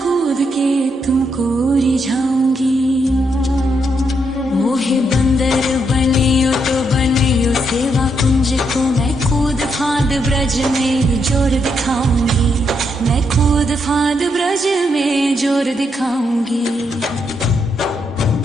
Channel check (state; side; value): normal; both; correlation 0.78